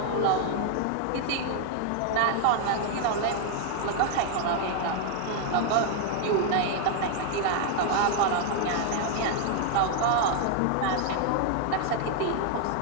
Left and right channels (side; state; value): both; different; correlation 0.00